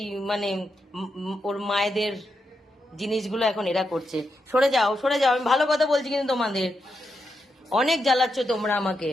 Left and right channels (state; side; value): normal; both; correlation 0.85